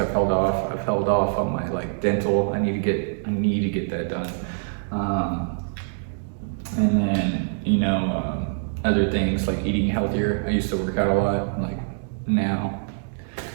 held off on my like dental. I need to get that done. And then, other things like eating healthier. I used to work out a lot, like now.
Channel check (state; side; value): silent; left; digital silence